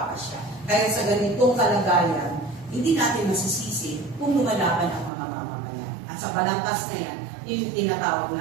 Kaya sa ganitong kalagayan, hindi natin masisisi kung lumalaban ang mga mamamayan. At sa balangkas na yan, yung tinatawag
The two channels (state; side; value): drops out; left; at 5.1 s